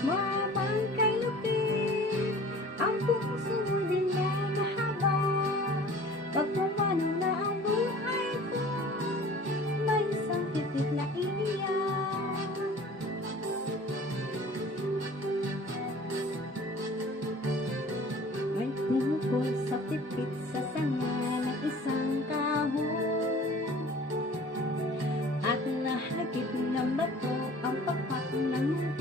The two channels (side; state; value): both; normal; correlation 0.46